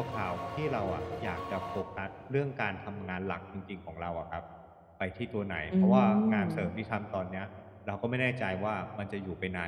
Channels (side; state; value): both; identical; correlation 1.00